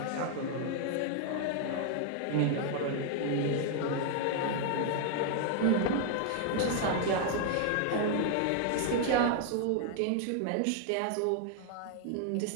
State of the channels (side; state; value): both; different; correlation 0.00